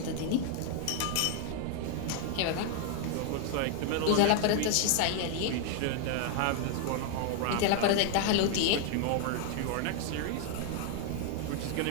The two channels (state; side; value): different; both; correlation 0.00